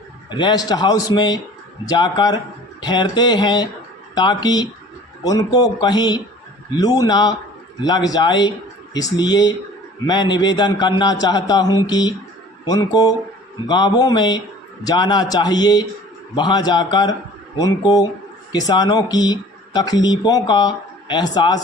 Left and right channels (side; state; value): both; normal; correlation 0.47